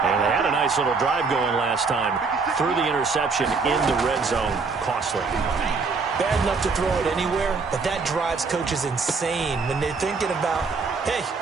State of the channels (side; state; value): left; quieter; 4.6 dB